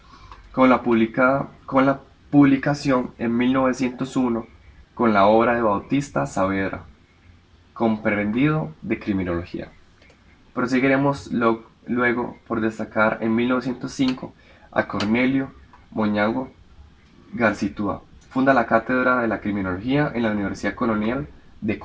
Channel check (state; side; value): identical; both; correlation 1.00